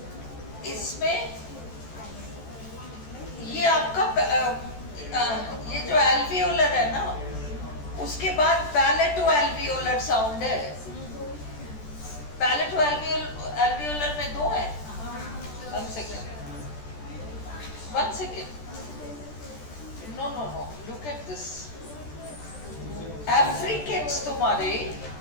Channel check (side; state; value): right; late; 14 ms